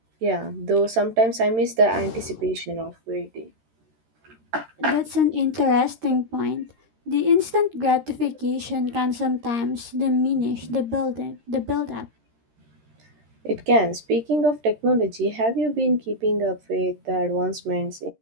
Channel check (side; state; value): left; late; 13 ms